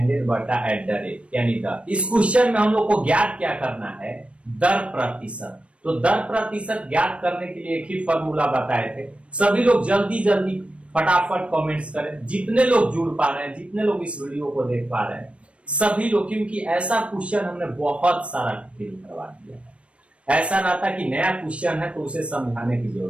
बटा एट द रेट यानी दर। इस क्वेश्चन में हम लोग को ज्ञात क्या करना है, दर प्रतिशत। तो दर प्रतिशत ज्ञात करने के लिए एक ही फॉर्मूला बताए थे। सभी लोग जल्दी जल्दी फटाफट कमेंट्स करें, जितने लोग जुड़ पा रहे हैं, जितने लोग इस वीडियो को देख पा रहे हैं सभी लोग, क्योंकि ऐसा क्वेश्चन हमने बहुत सारा फिल करवा दिया है। ऐसा ना था कि नया क्वेश्चन है तो उसे समझाने की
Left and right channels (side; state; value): left; late; 0.061 ms